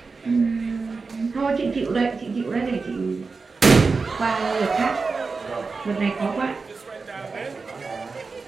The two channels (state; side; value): quieter; left; 4.4 dB